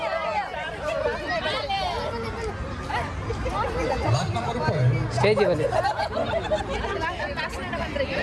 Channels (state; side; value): identical; both; correlation 1.00